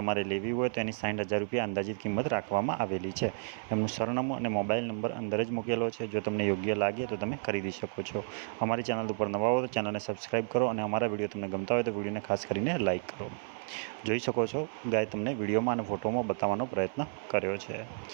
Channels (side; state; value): left; silent; 57 dB below the other